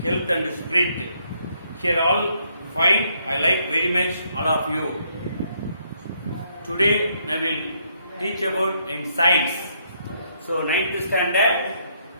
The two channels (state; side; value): inverted; both; correlation -0.72